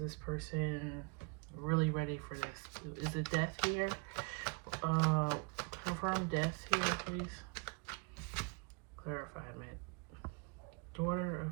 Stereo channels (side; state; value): left; quieter; 33.1 dB